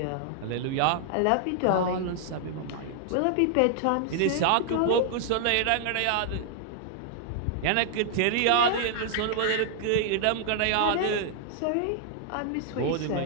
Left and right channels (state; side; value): different; both; correlation 0.00